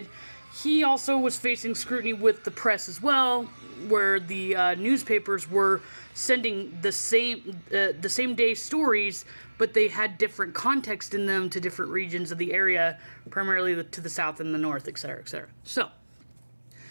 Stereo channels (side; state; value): both; inverted; correlation -1.00